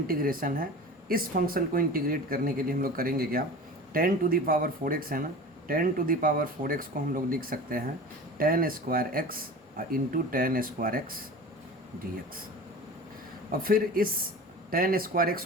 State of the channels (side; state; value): both; normal; correlation 0.36